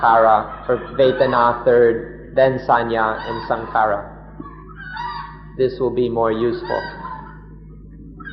or Vedana third, then Sanya and Sankhara. This will be more useful.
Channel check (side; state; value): both; identical; correlation 1.00